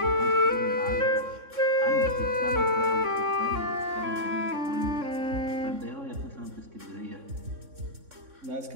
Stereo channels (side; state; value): left; late; 3.6 ms